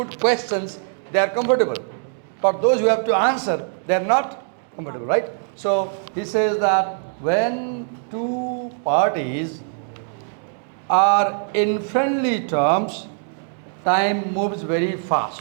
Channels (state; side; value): silent; left; digital silence